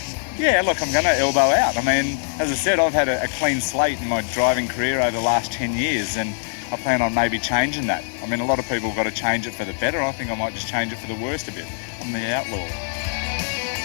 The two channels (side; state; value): right; silent; 64 dB below the other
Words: Yeah, look, I'm going to elbow out. As I said, I've had a clean slate in my driving career over the last 10 years, and I plan on maybe changing that. A lot of people have got to change it for the better. I think I might just change it for the worst a bit. I'm the outlaw.